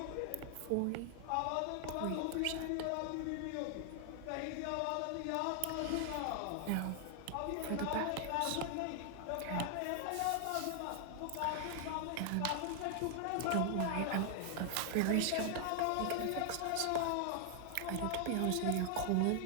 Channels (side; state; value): both; different; correlation 0.00